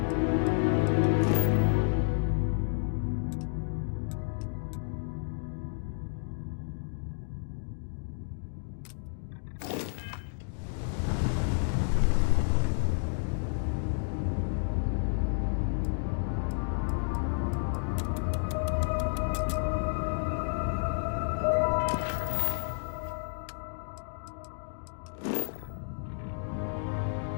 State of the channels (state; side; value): silent; right; digital silence